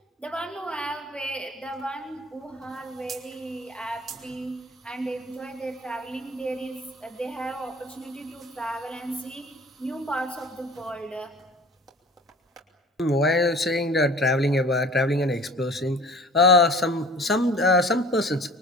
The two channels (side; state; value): both; normal; correlation 0.45